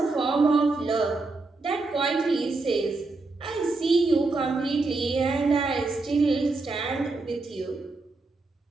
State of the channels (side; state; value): left; quieter; 3.5 dB